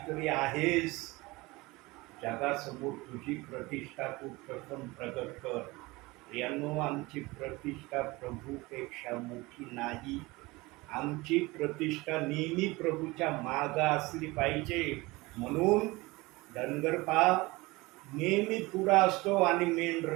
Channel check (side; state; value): left; quieter; 22.4 dB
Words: आहेस, जगासमोर तुझी प्रतिष्ठा तू प्रथम प्रगट कर. प्रियांनो, आमची प्रतिष्ठा प्रभूपेक्षा मोठी नाही. आमची प्रतिष्ठा नेहमी प्रभूच्या मागं असली पाहिजे. म्हणून धनगर नेहमी पुढं असतो आणि